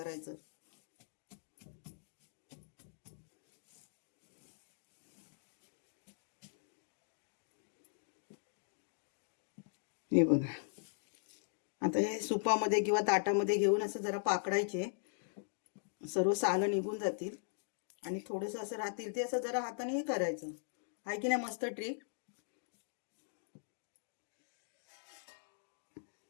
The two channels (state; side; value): silent; right; digital silence